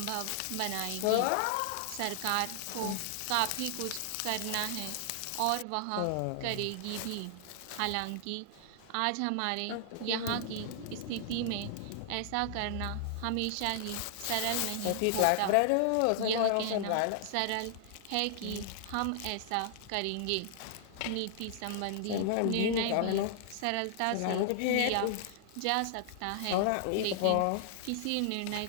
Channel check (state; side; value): different; both; correlation -0.01